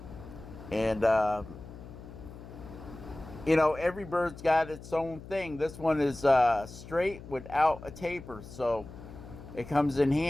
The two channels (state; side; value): noise; left; hum, 15 dB below the sound